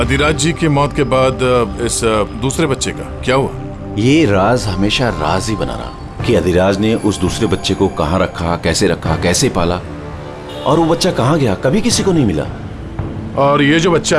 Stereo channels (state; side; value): identical; both; correlation 1.00